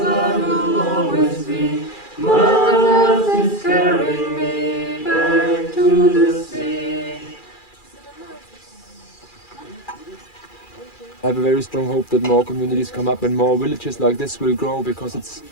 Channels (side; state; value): right; late; 2.4 ms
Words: I will always be. Mother Earth is carrying me back to the sea. I have a very strong hope that more communities come up and more villages like this will grow, because it's